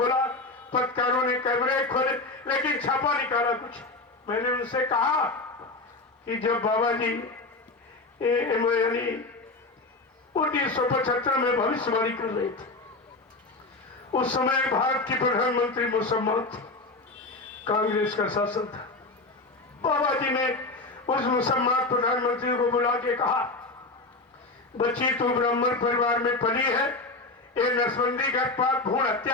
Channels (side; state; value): right; quieter; 3.3 dB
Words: पत्रकारों ने कैमरे खोले, लेकिन छापा निकाला कुछ। मैंने उनसे कहा कि जब बाबा जी यानी 1975 में भविष्यवाणी कर रहे थे, उस समय भारत की प्रधानमंत्री मुसम्मत थी, कांग्रेस का शासन था। बाबा जी ने उस मुसम्मत प्रधानमंत्री को बुला के कहा, बच्ची तू ब्राह्मण परिवार में पली है, ये नसबंदी गर्भपात भ्रूण